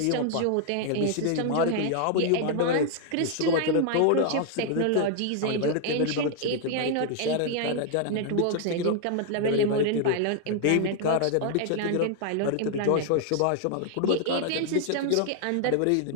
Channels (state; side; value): different; both; correlation 0.00